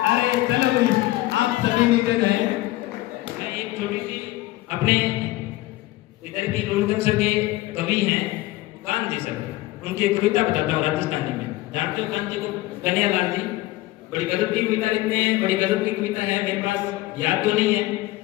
अरे चलो भाई, आप सभी नीचे जाए। मैं एक छोटी सी अपने इधर की रोडगंज के कवि हैं कांजी सर, उनकी एक कविता बताता हूँ राजस्थानी में। जानते हो कांजी को? कन्हैयालाल जी। बड़ी गजब की कविता लिखते हैं, बड़ी गजब की कविता है। मेरे पास याद तो नहीं है,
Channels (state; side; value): quieter; right; 18.0 dB